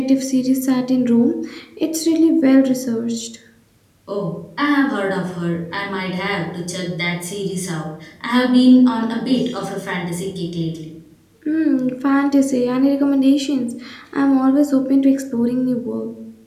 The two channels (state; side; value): identical; both; correlation 1.00